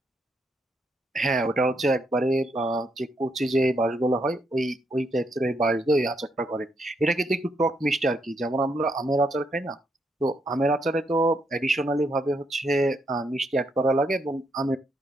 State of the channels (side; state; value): both; normal; correlation 0.77